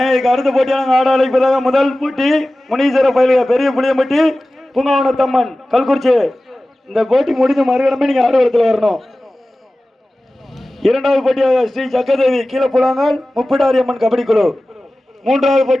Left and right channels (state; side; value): normal; both; correlation 0.96